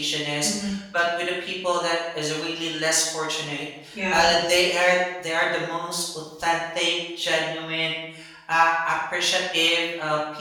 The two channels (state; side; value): identical; both; correlation 1.00